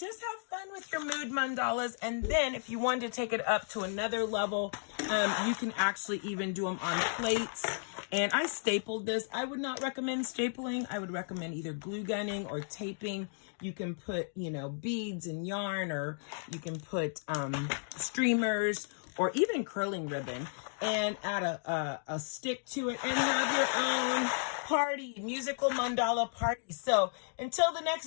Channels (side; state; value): right; silent; digital silence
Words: have fun with your mood mandalas. And then if you want to take it up to another level, you can actually even do them on plates. And I stapled this. I would not recommend stapling. I would recommend either glue gunning or taping. You can put, beads and yarn, or you can put streamers, or even curling ribbon, and add a stick to it, and have your own musical mandala party. So until the